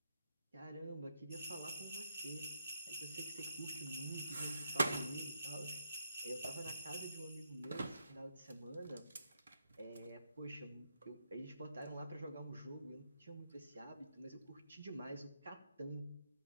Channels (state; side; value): inverted; both; correlation -0.81